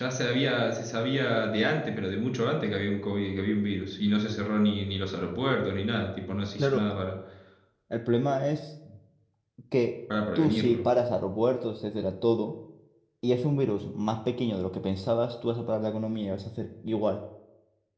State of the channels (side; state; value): both; identical; correlation 1.00